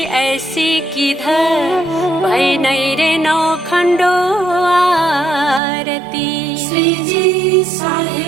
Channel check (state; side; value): drops out; left; at 5.6 s